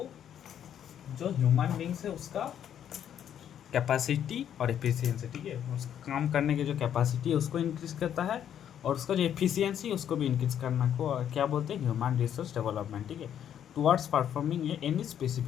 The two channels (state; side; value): quieter; right; 9.6 dB